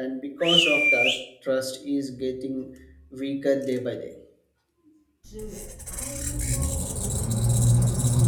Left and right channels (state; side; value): identical; both; correlation 1.00